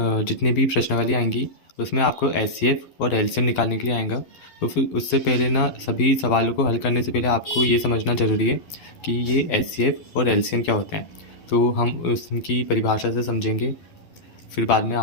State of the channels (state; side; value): late; right; 12 ms